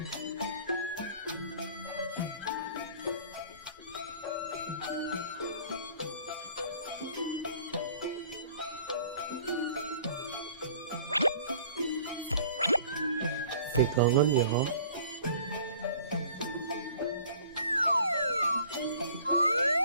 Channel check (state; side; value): inverted; both; correlation -0.51